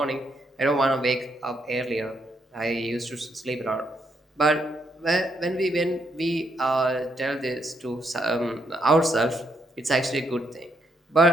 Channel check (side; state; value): both; normal; correlation 0.76